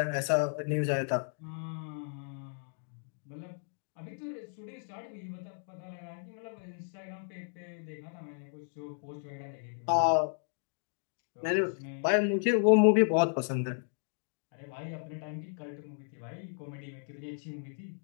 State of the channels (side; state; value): right; silent; digital silence